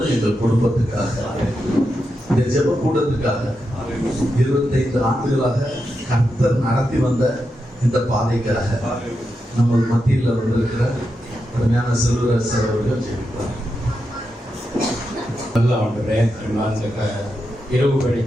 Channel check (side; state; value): both; normal; correlation 0.87